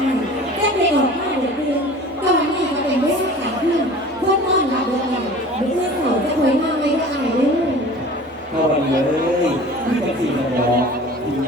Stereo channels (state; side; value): normal; both; correlation 0.42